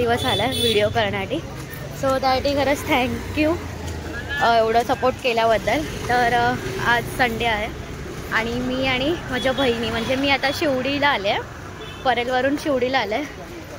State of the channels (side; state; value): both; identical; correlation 1.00